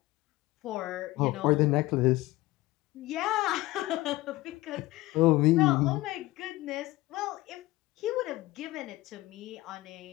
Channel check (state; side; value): quieter; right; 18.7 dB